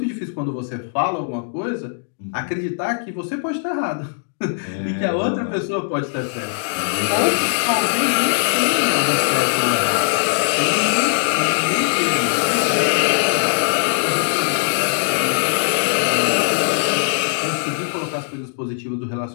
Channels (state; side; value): silent; right; digital silence